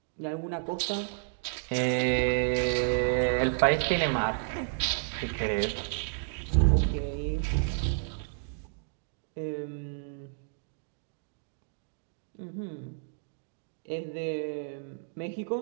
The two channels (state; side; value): silent; left; digital silence